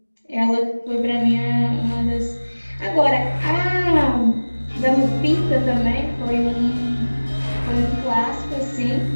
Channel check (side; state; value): both; inverted; correlation -1.00